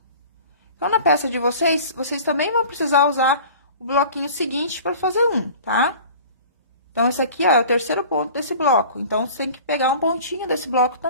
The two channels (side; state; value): both; inverted; correlation -0.43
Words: Então, na peça de vocês, vocês também vão precisar usar o bloquinho seguinte para fazer um, tá? Então, esse aqui, ó, é o terceiro ponto desse bloco. Então, você tem que pegar um pontinho desse bloco